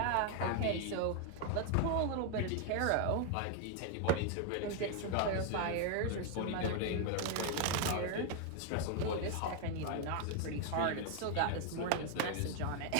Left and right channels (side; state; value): both; different; correlation 0.00